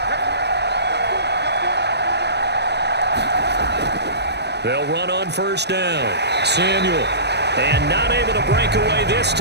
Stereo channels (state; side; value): late; left; 0.49 ms